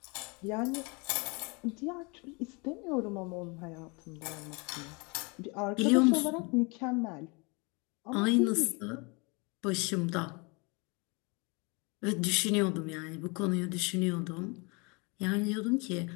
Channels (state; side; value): quieter; right; 29.9 dB